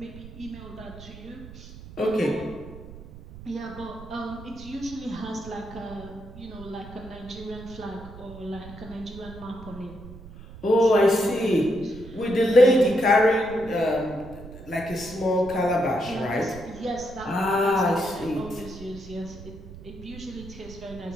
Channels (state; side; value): noise; right; rumble, 16 dB below the sound